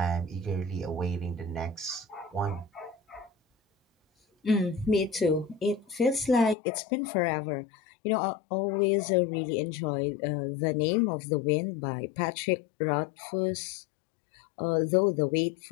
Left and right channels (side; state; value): right; drops out; at 6.6 s